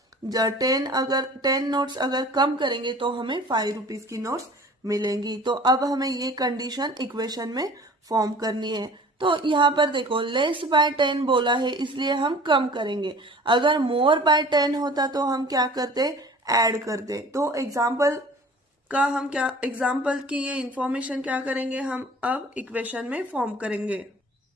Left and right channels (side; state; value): both; normal; correlation 0.46